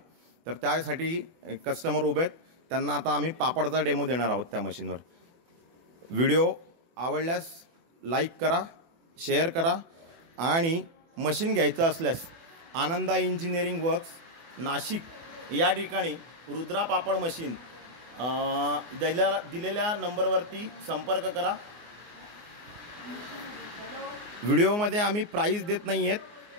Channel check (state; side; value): late; left; 24 ms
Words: तर त्यासाठी कस्टमर उभे आहेत, त्यांना आता आम्ही पापडचा डेमो देणार आहोत त्या मशीनवर. व्हिडिओ आवडल्यास लाईक करा, शेअर करा आणि मशीन घ्यायचं असल्यास आनंदा इंजिनिअरिंग वर्क्स नाशिक या ठिकाणी रुद्रा पापड मशीन दिलेल्या नंबरवरती संपर्क करा. व्हिडिओमध्ये आम्ही प्राईस देत नाही आहेत,